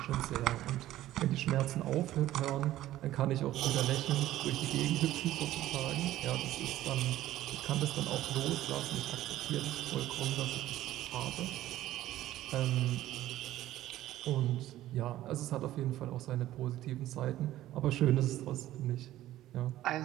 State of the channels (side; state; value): left; quieter; 14.3 dB